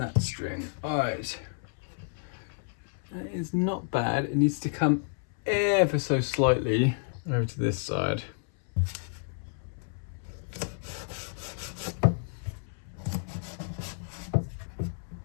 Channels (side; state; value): right; silent; 58 dB below the other